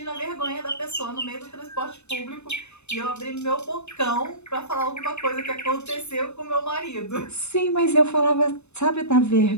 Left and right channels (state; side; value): late; right; 0.81 ms